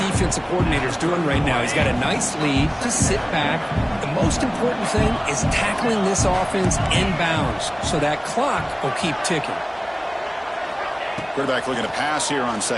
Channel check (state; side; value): identical; both; correlation 1.00